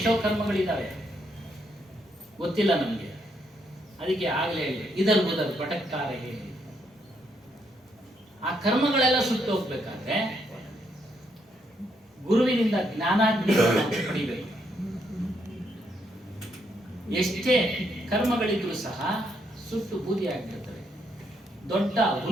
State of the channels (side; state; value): both; normal; correlation 0.75